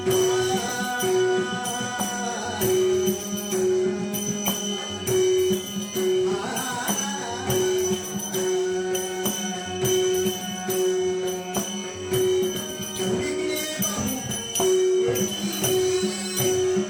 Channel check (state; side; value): identical; both; correlation 1.00